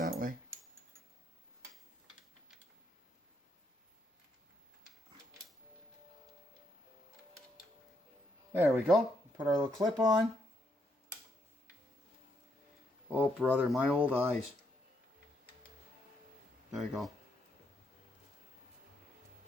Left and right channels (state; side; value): normal; both; correlation 0.76